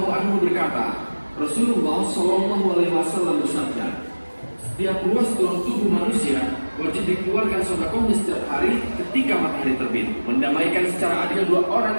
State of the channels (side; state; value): both; inverted; correlation -1.00